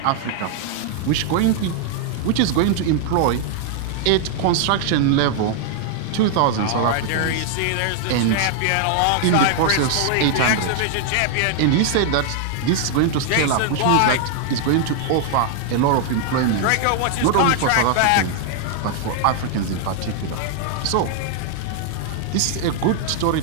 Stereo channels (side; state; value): both; different; correlation 0.00